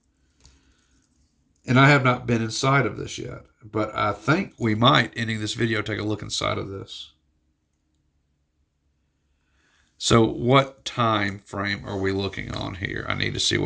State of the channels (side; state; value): both; identical; correlation 1.00